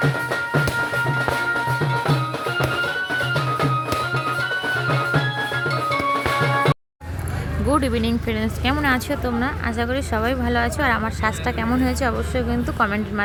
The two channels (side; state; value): both; identical; correlation 1.00